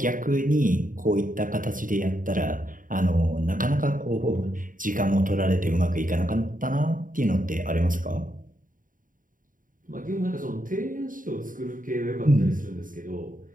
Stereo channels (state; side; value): late; left; 0.39 ms